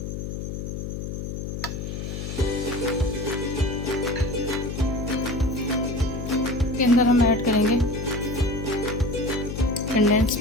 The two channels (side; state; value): left; noise; hum, 5 dB below the sound